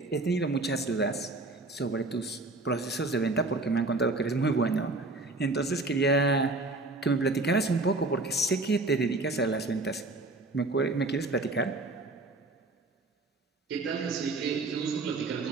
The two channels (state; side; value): quieter; left; 3.1 dB